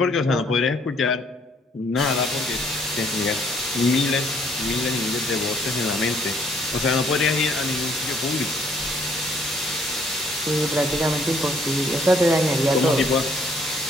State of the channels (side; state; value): both; normal; correlation 0.65